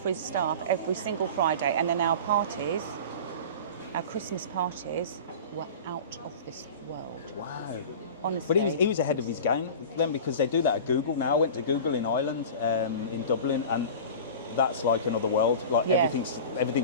his staff every single Friday. And then our parties, our Christmas parties, were out of this world. Wow. Honestly. But he was ahead of his game then, because they do that at Google now. I went to Google in Ireland, in Dublin, and that's like another world. Like Yeah.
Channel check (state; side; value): inverted; both; correlation -0.35